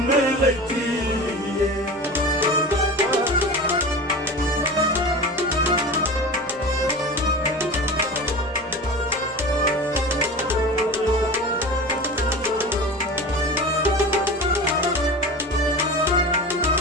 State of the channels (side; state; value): both; normal; correlation 0.31